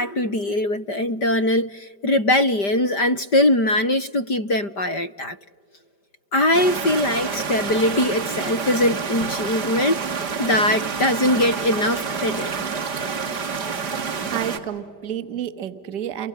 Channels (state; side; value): late; right; 5.1 ms